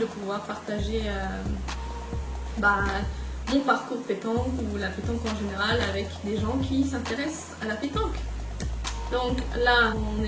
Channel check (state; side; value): identical; both; correlation 1.00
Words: pouvoir partager mon parcours pétanque ou la pétanque en général avec des gens qui s'intéressent à la pétanque. Donc là, on